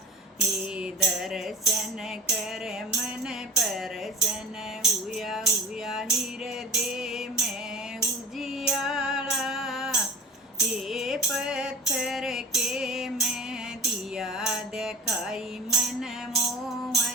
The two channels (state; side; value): normal; both; correlation 0.38